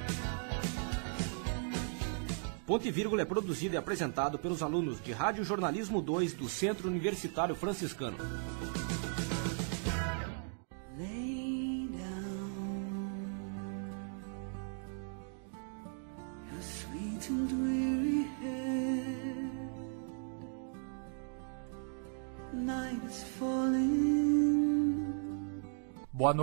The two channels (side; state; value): left; silent; 53 dB below the other